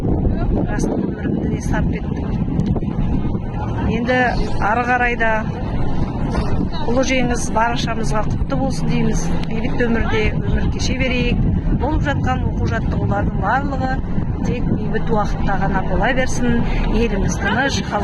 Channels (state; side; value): identical; both; correlation 1.00